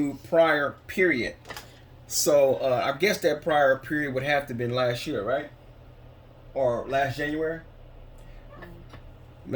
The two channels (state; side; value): identical; both; correlation 1.00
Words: prior period. So I guess that prior period would have to have been last year, right? Or last January?